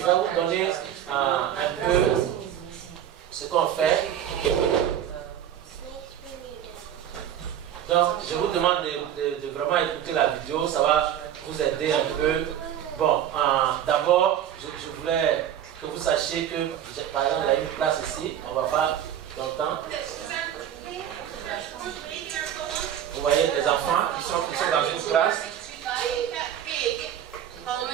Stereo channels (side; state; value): left; quieter; 10.3 dB